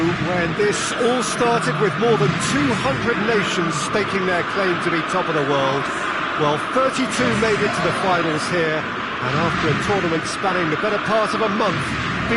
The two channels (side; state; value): both; identical; correlation 1.00